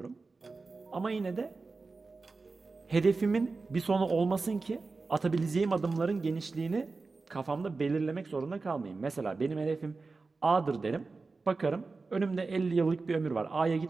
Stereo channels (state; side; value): quieter; left; 4.0 dB